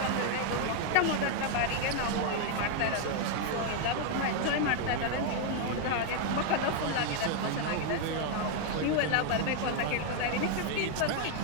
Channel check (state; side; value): different; both; correlation 0.00